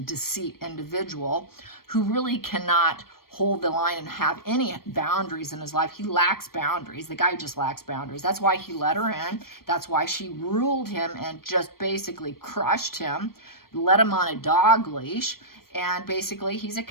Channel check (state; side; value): late; right; 0.93 ms